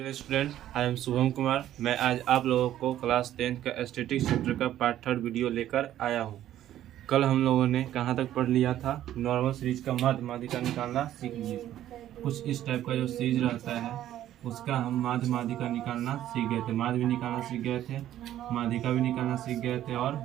Student, I am Shubham Kumar. मैं आज आप लोगों को क्लास 10 का स्टैटिस्टिक्स चैप्टर का पार्ट 3 वीडियो लेकर आया हूं। कल हम लोगों ने कहां तक पढ़ लिया था? नॉर्मल सीरीज का माध्य माध्यिका निकालना सीख लिए। कुछ इस टाइप का जो सीरीज रहता है उसका हम माध्य माध्यिका निकालना सीख गए थे। माध्य भी निकालना सीख गए थे, माध्यिका भी निकालना सीख गए थे और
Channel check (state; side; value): quieter; left; 12.4 dB